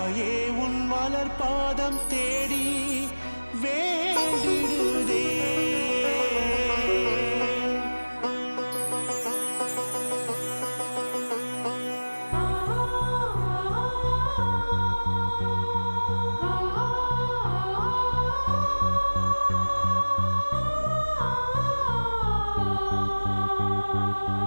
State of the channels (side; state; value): both; inverted; correlation -1.00